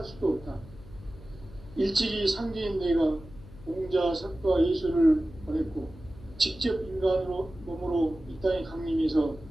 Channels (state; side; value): noise; left; hum, 18 dB below the sound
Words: 수도 없다. 일찍이 상제인 내가 공자, 석과 예수를 보냈고 직접 인간으로 몸으로 이 땅에 강림해서